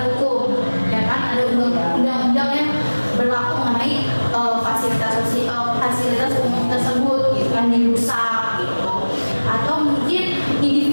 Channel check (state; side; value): inverted; both; correlation -1.00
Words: fasilitas umum tersebut gitu kan dirusak gitu, atau mungkin